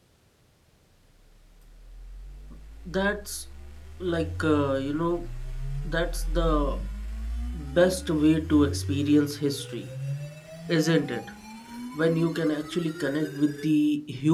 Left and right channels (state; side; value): identical; both; correlation 1.00